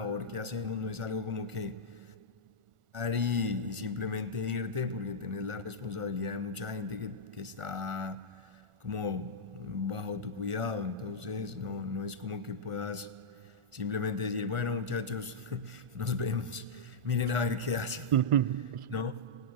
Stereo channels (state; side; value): late; left; 1.4 ms